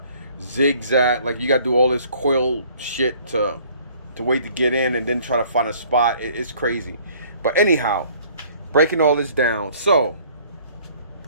zigzag, like you gotta do all this coil shit to wait to get in and then try to find a spot. It's crazy. But anyhow, breaking all this down. So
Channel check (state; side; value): inverted; both; correlation -0.56